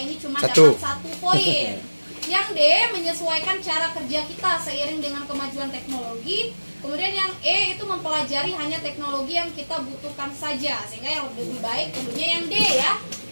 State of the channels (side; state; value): both; inverted; correlation -1.00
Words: ini cuma dapat 1 poin. Yang D, menyesuaikan cara kerja kita seiring dengan kemajuan teknologi. Kemudian yang E itu mempelajari hanya teknologi yang kita butuhkan saja, sehingga yang lebih baik tentunya yang D ya,